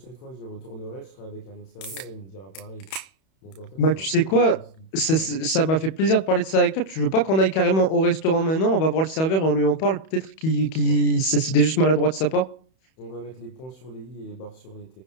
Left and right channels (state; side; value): late; right; 31 ms